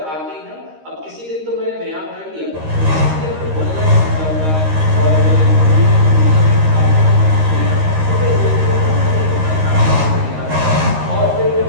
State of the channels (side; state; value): left; late; 13 ms